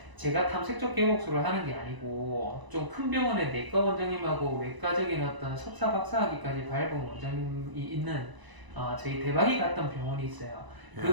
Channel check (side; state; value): left; late; 1.0 ms